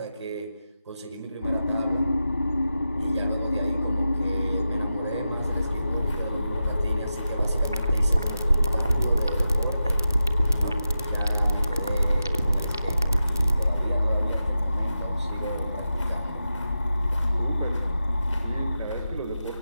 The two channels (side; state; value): both; inverted; correlation -0.91